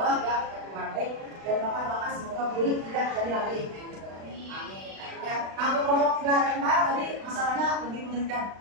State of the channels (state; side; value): late; left; 36 ms